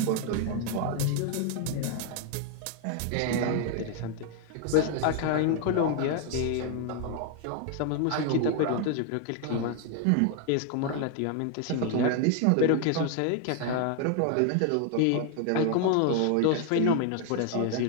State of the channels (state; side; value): different; both; correlation 0.00